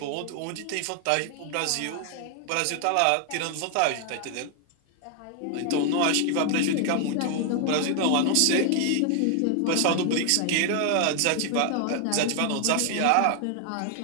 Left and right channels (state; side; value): different; both; correlation 0.00